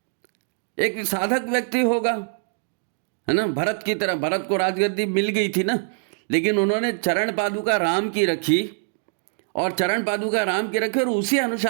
एक साधक व्यक्ति होगा, है ना? भरत की तरह, भरत को राजगद्दी मिल गई थी ना, लेकिन उन्होंने चरण पादुका राम की रखी और चरण पादुका राम की रखी और उसी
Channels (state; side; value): silent; left; digital silence